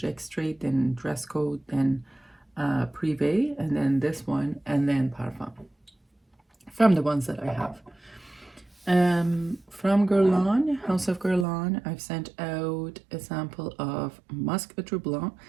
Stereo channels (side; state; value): left; drops out; at 11.5 s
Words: Extrait, then Dress Code, then Privé, and then this one, and then Parfum, from the ones that I have. From Guerlain, House of Guerlain, I've sent out a sample of Musc Outre Blanc.